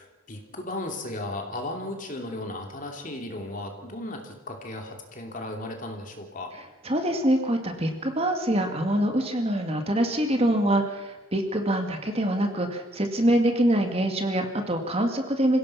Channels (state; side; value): normal; both; correlation 0.66